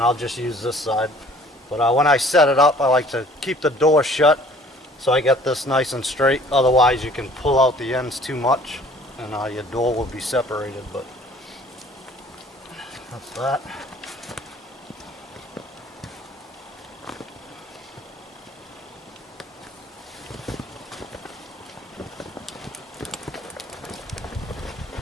I'll just use this side. But when I set it up, I like to keep the door shut so I get this nice and straight. Otherwise you can pull out the ends too much and your door will be separated. But that's that.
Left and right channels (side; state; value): both; normal; correlation 0.53